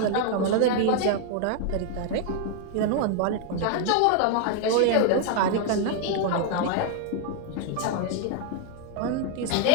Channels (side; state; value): both; different; correlation 0.00